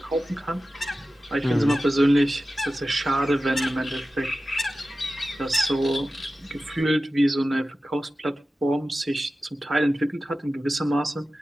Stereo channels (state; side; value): normal; both; correlation 0.94